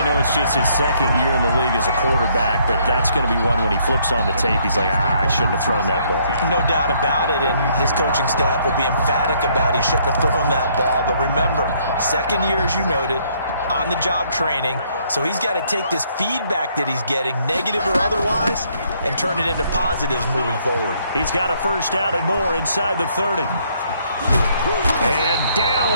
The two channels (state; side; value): inverted; both; correlation -0.67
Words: know it's just his second year in the league as a quarterback, but that's going to be one when he flips on the tape. He's like, I shouldn't have thrown that ball. No doubt about it, and his coaching staff will be emphatic about he shouldn't have thrown that ball. But remember, second year, as you noted, on-the-job training, so he's got to take this feedback that he's getting, negative or otherwise, and turn it into positives moving forward. He's got a first down and more inside the 30. And